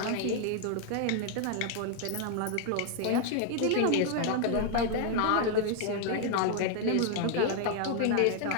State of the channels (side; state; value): both; different; correlation 0.00